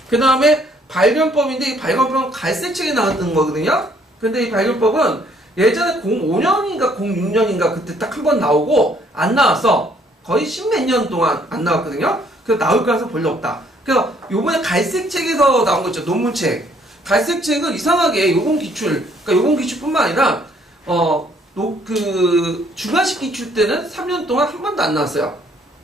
그 다음에 발견법인데 이 발견법은 갈색책에 나왔던 거거든요. 근데 이 발견법은 예전에 05년인가 06년인가 그때 딱 한 번 나오고 안 나왔어. 거의 십몇 년 동안 안 나왔거든요. 그래서 나올 가능성이 별로 없다. 그래서 요번에 갈색책에서 나온 거 있죠. 논문책. 갈색책은 이상하게 요번 기출, 그러니까 요번 기출뿐만 아니라 그 주관식 기출 때는 3년 동안 한 번도 안 나왔어요.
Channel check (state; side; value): normal; both; correlation 0.64